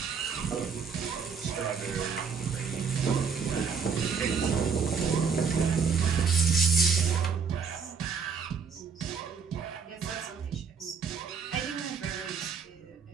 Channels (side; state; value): left; quieter; 5.9 dB